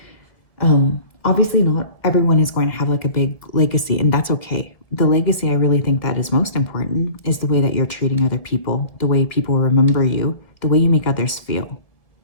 Obviously not everyone is going to have like a big legacy, and that's okay. The legacy I really think that is most important is the way that you're treating other people, the way people remember you, the way you make others feel.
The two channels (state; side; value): late; right; 1.9 ms